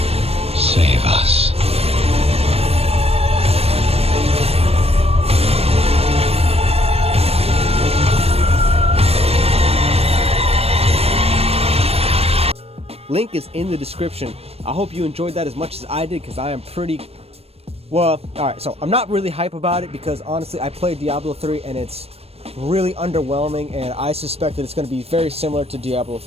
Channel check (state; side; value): late; left; 0.29 ms